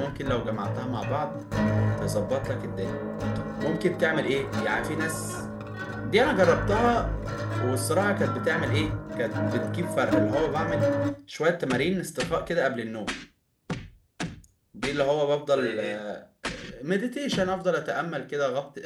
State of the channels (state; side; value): identical; both; correlation 1.00